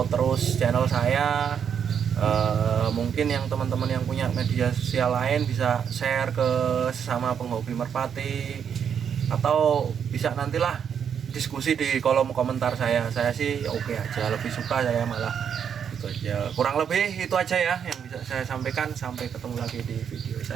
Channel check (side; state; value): left; quieter; 7.8 dB